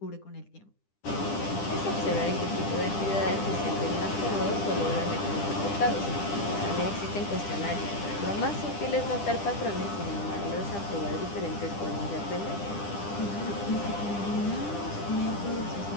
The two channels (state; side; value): late; right; 10 ms